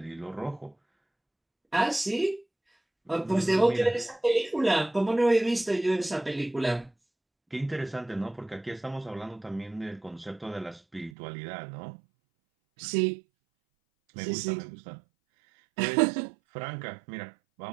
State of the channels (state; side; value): drops out; left; at 11.2 s